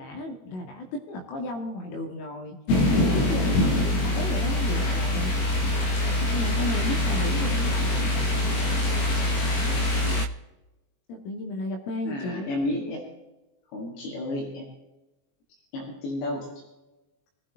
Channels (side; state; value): right; late; 22 ms